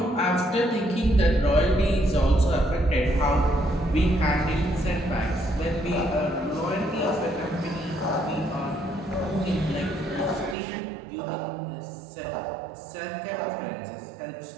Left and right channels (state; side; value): drops out; left; at 10.6 s